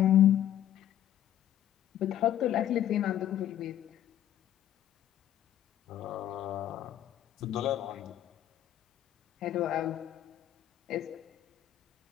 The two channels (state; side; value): quieter; right; 11.5 dB